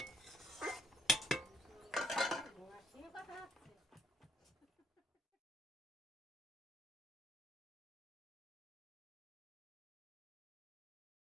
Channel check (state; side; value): normal; both; correlation 0.70